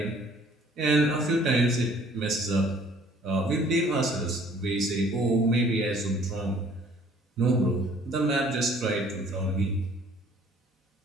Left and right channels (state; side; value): normal; both; correlation 0.56